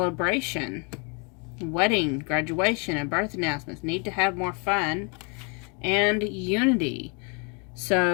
wedding, graduation, and birth announcements. Need to have more fun, and unity.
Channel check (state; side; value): quieter; right; 34.8 dB